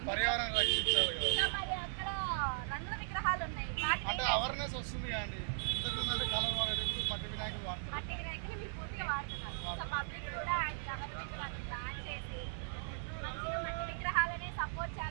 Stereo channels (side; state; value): left; silent; digital silence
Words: పర్యావరణం రక్షించాలి కదా. మరి అక్కడ రంగుల విగ్రహాలు ఉన్నాయి అంటే అవేర్నెస్ వస్తుంది కానీ ఇంతకుముందు కలర్ వాడేటప్పుడు మట్టి వినాయకులు వాడుతున్నారు. మట్టి వినాయకులు మీరు పూర్తిగా వాడుతున్నారు. సో పబ్లిక్ కూడా గవర్నమెంట్ వాళ్ళు ప్లాన్ చేసి మంచిగా మట్టి విగ్రహాలనే సపోర్ట్